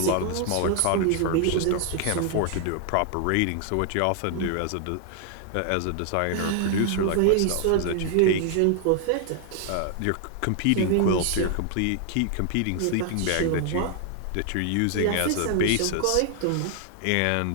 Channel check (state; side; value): different; both; correlation 0.00